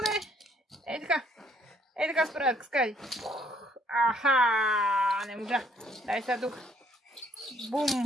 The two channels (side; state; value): both; normal; correlation 0.65